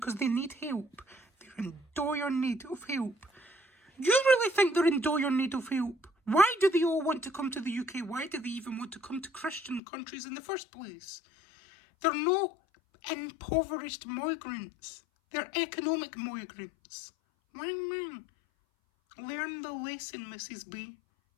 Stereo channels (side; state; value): right; drops out; at 9.8 s